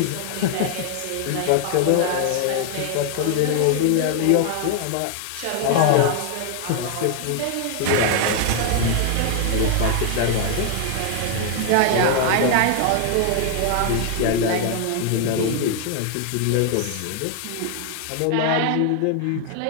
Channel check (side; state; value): both; different; correlation 0.00